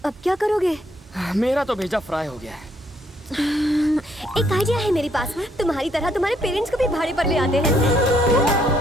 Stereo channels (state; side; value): normal; both; correlation 0.70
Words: अब क्या करोगे? मेरा तो भेजा फ्राई हो गया है। एक आइडिया है मेरे पास। तुम्हारी तरह तुम्हारे पेरेंट्स को भी भाड़े पर ले आते हैं।